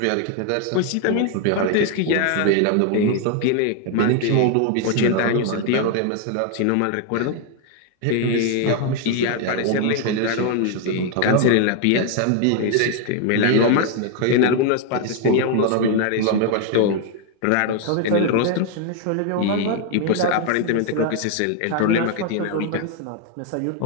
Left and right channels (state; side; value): different; both; correlation 0.01